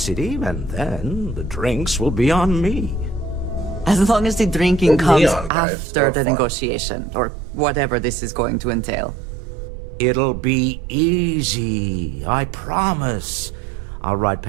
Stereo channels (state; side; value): drops out; left; at 5.5 s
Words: and then the drinks will be on me. As long as the drinking comes Neon, guys. after the Fun. negotiation, or whatever this is going to entail. It'll be easy, I promise. I'll ride